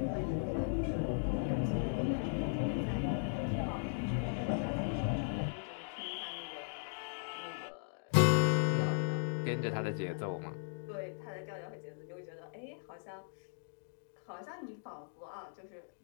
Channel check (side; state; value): right; silent; digital silence